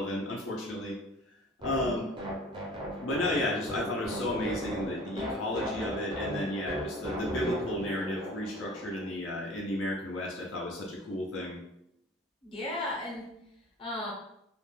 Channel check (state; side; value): normal; both; correlation 0.45